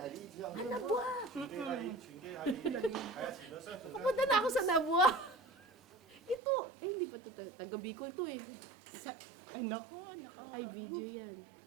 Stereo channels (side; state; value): left; drops out; at 6.4 s